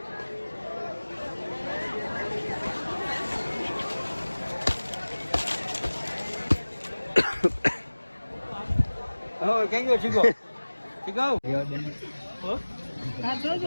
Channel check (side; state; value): both; inverted; correlation -1.00